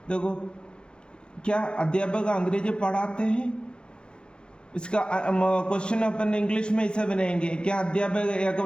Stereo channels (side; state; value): right; late; 0.051 ms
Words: देखो क्या अध्यापक अंग्रेजी पढ़ाते हैं, इसका क्वेश्चन अपन इंग्लिश में ऐसे बनाएंगे। क्या अध्यापक एक